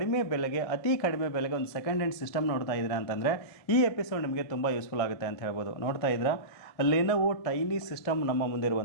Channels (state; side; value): late; right; 1.7 ms